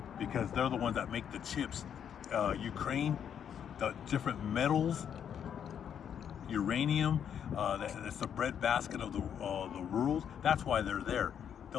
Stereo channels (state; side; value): quieter; right; 8.6 dB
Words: because they're the ones that make the chips. Ukraine, the different metals, uranium, it's the breadbasket of the world. That's why they're there.